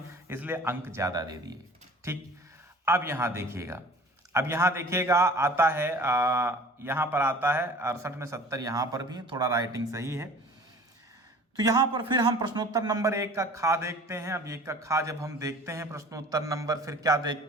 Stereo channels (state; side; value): normal; both; correlation 0.45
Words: इसलिए अंक ज़्यादा दे दिए, ठीक। अब यहाँ देखिएगा, आता है यहाँ पर आता है 68 में 70, यहाँ पर भी थोड़ा राइटिंग सही है। तो यहाँ पर फिर हम प्रश्नोत्तर नंबर 1 का खा देखते हैं। अब 1 का खा जब हम देखते हैं प्रश्नोत्तर नंबर, फिर क्या